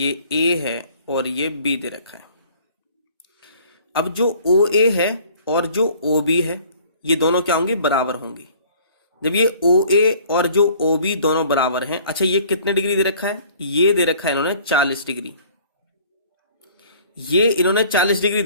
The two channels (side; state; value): both; inverted; correlation -0.53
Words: A है और ये B दे रखा है। अब जो OA है और जो OB है ये दोनों क्या होंगे, बराबर होंगे। जब ये OA और जो OB दोनों बराबर हैं, अच्छा ये कितने डिग्री दे रखा है, ये दे रखा है इन्होंने 40 डिग्री। ये इन्होंने 40 डिग्री